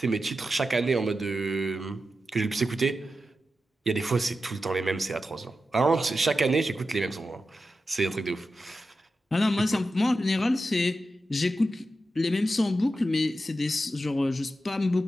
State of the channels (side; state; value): both; normal; correlation 0.90